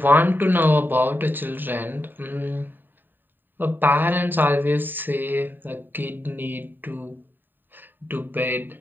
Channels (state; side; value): late; left; 0.092 ms